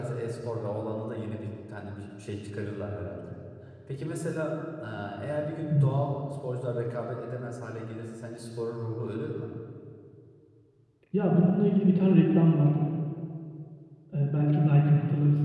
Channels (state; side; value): identical; both; correlation 1.00